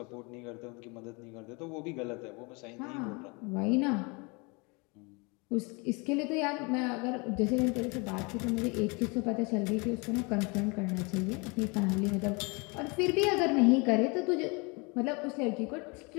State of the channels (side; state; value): right; quieter; 29.5 dB